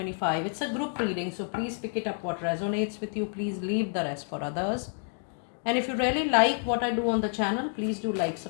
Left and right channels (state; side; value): silent; right; 58 dB below the other